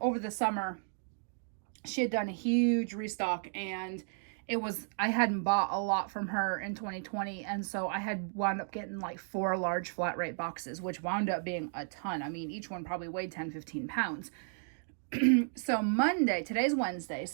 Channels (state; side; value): silent; left; digital silence